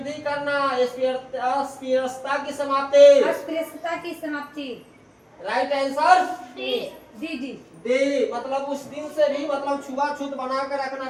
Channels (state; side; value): identical; both; correlation 1.00